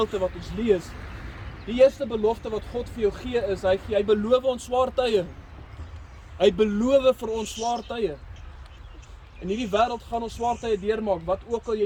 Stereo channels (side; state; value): both; identical; correlation 1.00